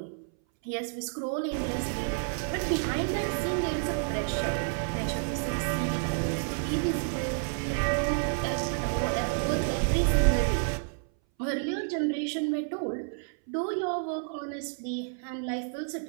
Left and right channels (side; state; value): left; silent; 58 dB below the other